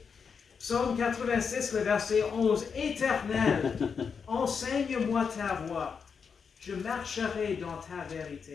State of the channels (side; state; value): right; quieter; 6.1 dB